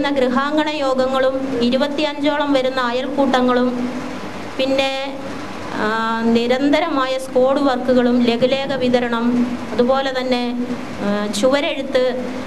ഗൃഹാങ്കണ യോഗങ്ങളും 25ഓളം വരുന്ന അയൽക്കൂട്ടങ്ങളും പിന്നെ നിരന്തരമായ സ്ക്വാഡ് വർക്കുകളും ലഘുലേഖ വിതരണം, അതുപോലെ തന്നെ ചുവരെഴുത്ത്.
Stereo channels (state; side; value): identical; both; correlation 1.00